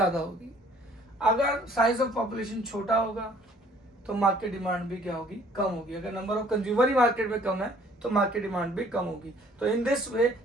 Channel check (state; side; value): normal; both; correlation 0.58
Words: होगी। अगर साइज ऑफ पॉपुलेशन छोटा होगा तो मार्केट डिमांड भी क्या होगी? कम होगी। अगर number of consumer he market में कम है तो मार्केट डिमांड भी कम होगी। तो in this way